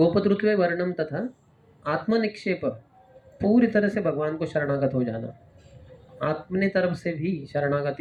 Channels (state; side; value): identical; both; correlation 1.00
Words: वर्णम तथा आत्मनिक्षेप, पूरी तरह से भगवान को शरणागत हो जाना, अपने तरफ से भी